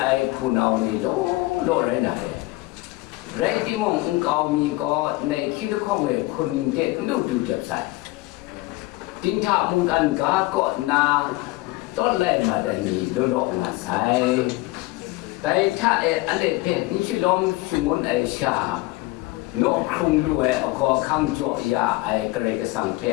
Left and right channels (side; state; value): right; quieter; 20.7 dB